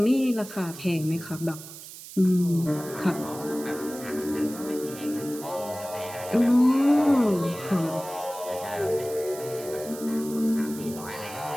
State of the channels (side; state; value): right; noise; hiss, 14 dB below the sound